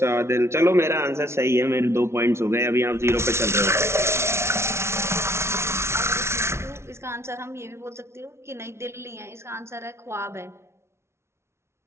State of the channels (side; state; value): left; late; 0.13 ms